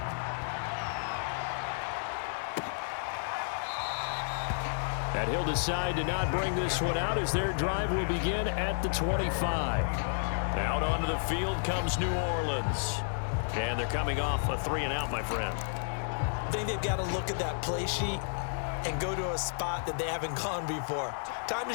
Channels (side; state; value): right; silent; digital silence